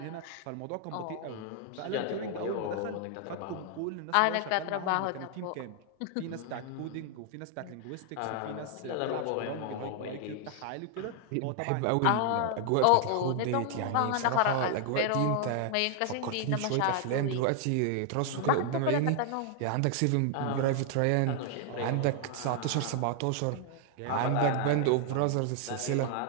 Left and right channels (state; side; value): different; both; correlation 0.00